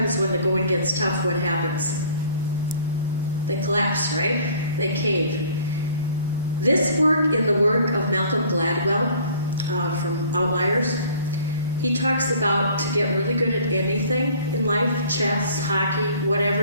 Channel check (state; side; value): inverted; both; correlation -0.52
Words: when the going gets tough, what happens? They collapse, right? They cave. This work in the work of Malcolm Gladwell from Outliers, he talks about to get really good at anything in life, chess, hockey, whatever